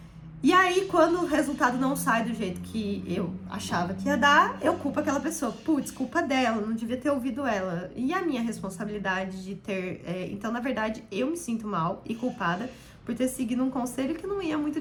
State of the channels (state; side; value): identical; both; correlation 1.00